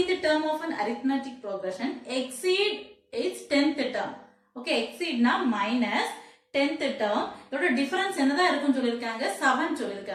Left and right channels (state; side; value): identical; both; correlation 1.00